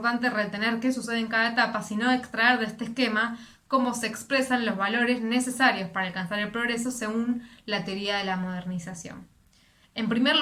retener qué sucede en cada etapa, sino extraer de este esquema cómo se expresan los valores necesarios para alcanzar el progreso según la teoría de la modernización. En primer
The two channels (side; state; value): both; identical; correlation 1.00